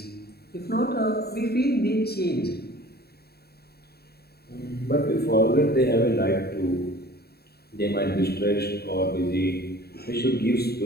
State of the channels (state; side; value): late; right; 0.46 ms